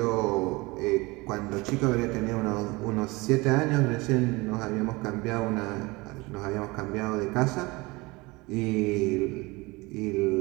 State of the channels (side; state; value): left; quieter; 23.7 dB